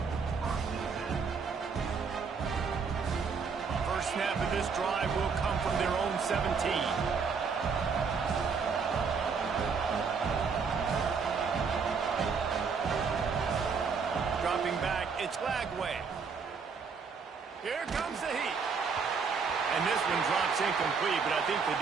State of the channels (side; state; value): left; quieter; 5.5 dB